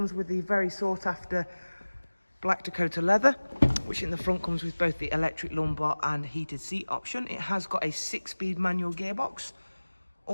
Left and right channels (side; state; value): both; inverted; correlation -1.00